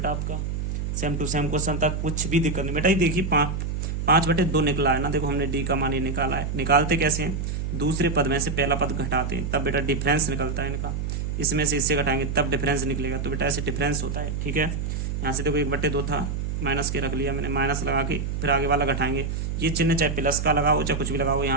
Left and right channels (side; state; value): right; noise; hum, 2 dB below the sound